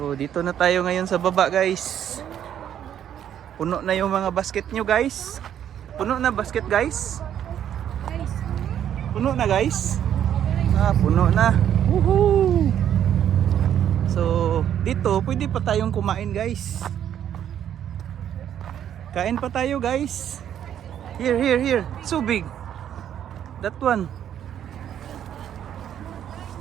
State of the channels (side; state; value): left; quieter; 10.0 dB